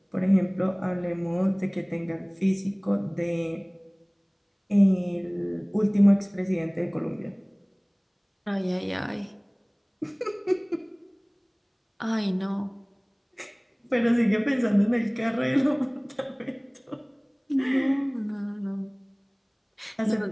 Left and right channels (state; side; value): identical; both; correlation 1.00